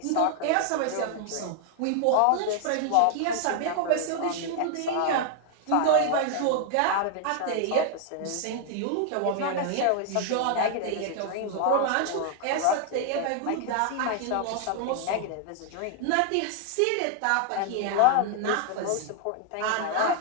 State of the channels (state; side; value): different; both; correlation 0.00